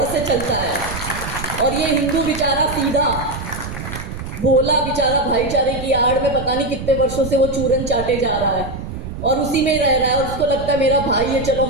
से चलता है। और ये हिंदू बेचारा सीधा भोला बेचारा भाईचारे की आड़ में पता नहीं कितने वर्षों से वो चूरन चाटे जा रहा है और उसी में ही रह रहा है। और उसको लगता है मेरा भाई है, चलो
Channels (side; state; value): right; noise; rumble, 8 dB below the sound